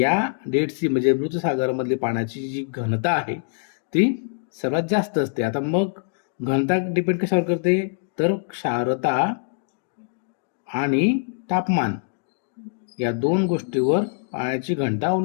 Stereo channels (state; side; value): silent; right; digital silence